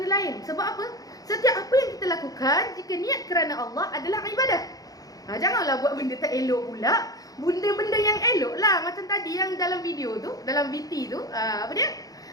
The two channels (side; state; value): right; late; 0.18 ms